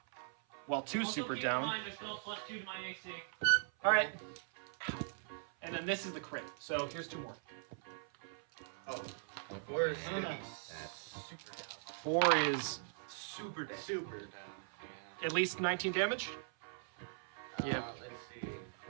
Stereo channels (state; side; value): silent; left; 51 dB below the other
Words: Well, 2's Also, super keep down. in mind, there's still +2 to my AC. Alright. And then this is the crit. So here's 2 more. Oh. 4 is gonna be That's super down. 4 is Super down. Super down. Yeah. at least 19 damage. Let's see.